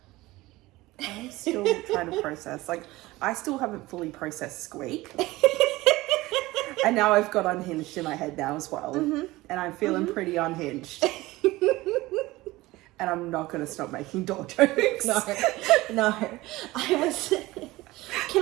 I'm still trying to process. Like, I still haven't fully processed Squeak. And now I've got Unhinged in my head now as well. And I'm feeling pretty unhinged. And I'm not going to stop making door jokes. No.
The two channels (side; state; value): left; quieter; 19.2 dB